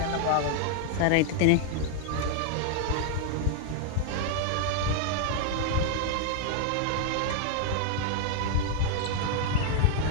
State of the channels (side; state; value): both; different; correlation 0.00